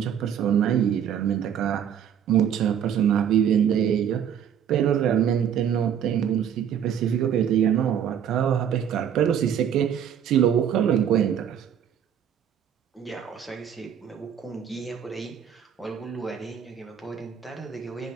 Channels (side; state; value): left; quieter; 8.8 dB